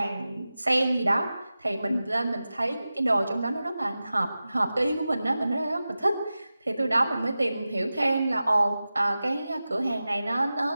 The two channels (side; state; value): both; inverted; correlation -0.95